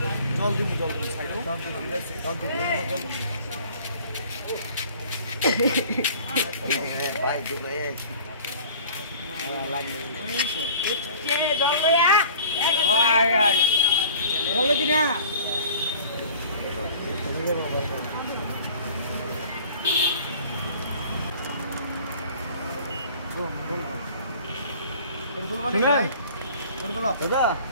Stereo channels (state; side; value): inverted; both; correlation -0.47